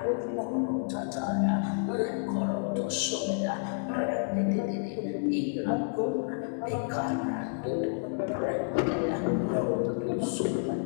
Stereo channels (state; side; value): silent; right; digital silence